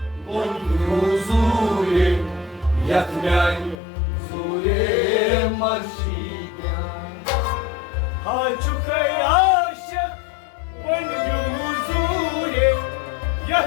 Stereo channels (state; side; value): drops out; right; at 3.8 s